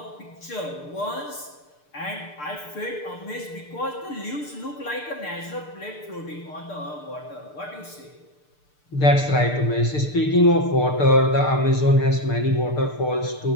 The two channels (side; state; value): right; late; 6.7 ms